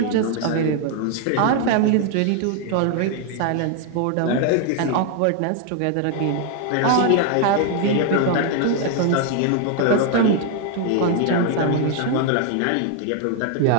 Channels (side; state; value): both; different; correlation 0.00